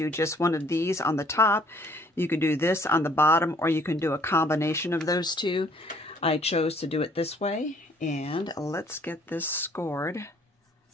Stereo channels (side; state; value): both; normal; correlation 0.60